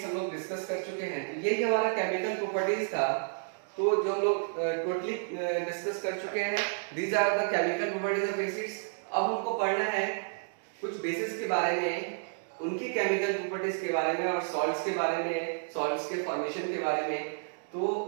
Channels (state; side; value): silent; left; digital silence